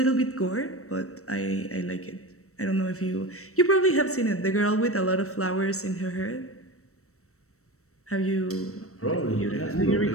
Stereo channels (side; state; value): right; late; 0.64 ms